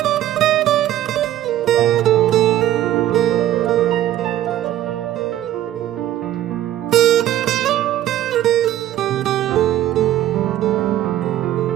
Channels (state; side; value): quieter; left; 13.0 dB